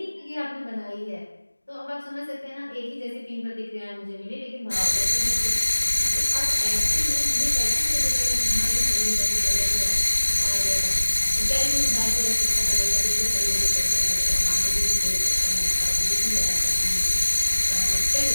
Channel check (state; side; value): inverted; both; correlation -1.00